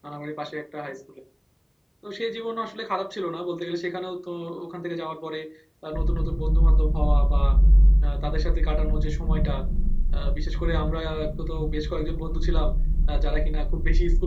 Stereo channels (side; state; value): both; identical; correlation 1.00